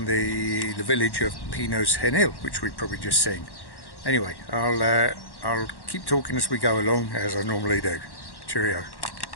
the village of Pinos Genil, which we've probably just seen. Anyway, I'll keep talking as we go along, as I normally do. Cheerio.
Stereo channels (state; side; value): late; right; 1.1 ms